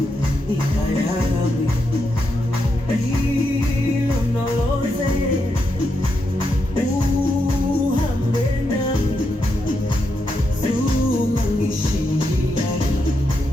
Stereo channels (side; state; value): both; normal; correlation 0.83